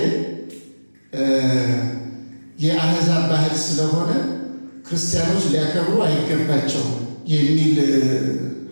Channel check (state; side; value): inverted; both; correlation -1.00